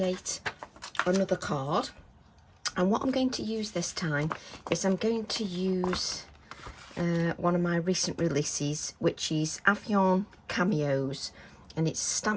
another card, and what I'm going to use this time is I'm going to use one of my recent releases, which is Avian Cameos, and it's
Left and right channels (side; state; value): both; identical; correlation 1.00